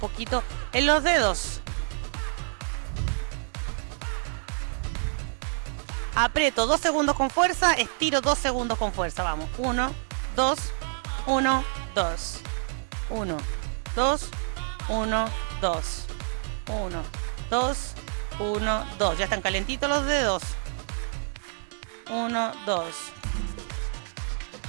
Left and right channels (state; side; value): silent; left; digital silence